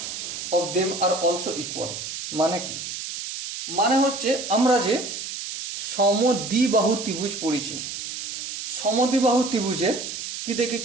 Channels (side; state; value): right; noise; hiss, 6 dB below the sound